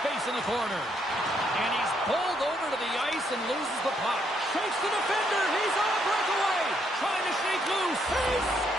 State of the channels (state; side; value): normal; both; correlation 0.73